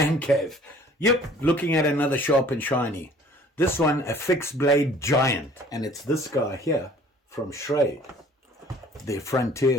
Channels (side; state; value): both; normal; correlation 0.52